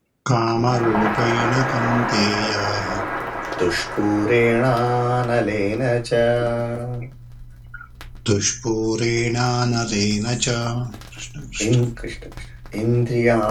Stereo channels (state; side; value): identical; both; correlation 1.00